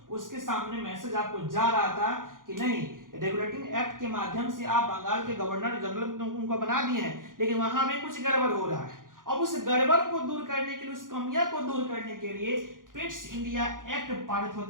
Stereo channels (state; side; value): late; left; 0.90 ms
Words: उसके सामने मैसेज आपको जा रहा था कि नहीं, रेगुलेटिंग एक्ट के माध्यम से आप बंगाल के गवर्नर जनरल उनको बना दिए हैं, लेकिन वहां में कुछ गड़बड़ हो रहा है। अब उस गड़बड़ को दूर करने के लिए, उस कमियां को दूर करने के लिए पिट्स इंडिया एक्ट पारित